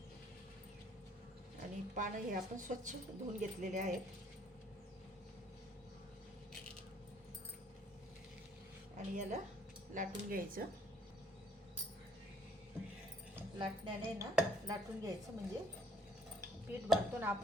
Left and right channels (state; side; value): normal; both; correlation 0.61